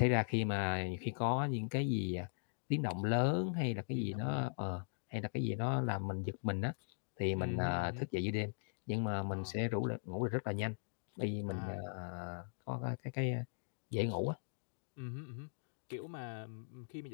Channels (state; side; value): silent; right; digital silence